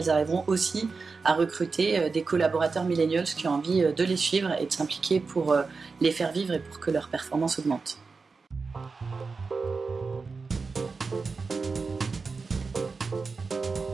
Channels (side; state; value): left; quieter; 4.5 dB